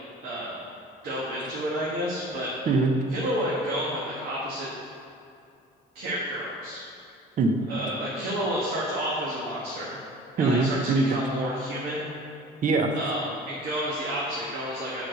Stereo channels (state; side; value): normal; both; correlation 0.43